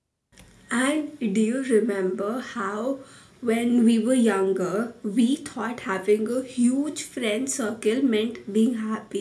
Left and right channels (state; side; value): identical; both; correlation 1.00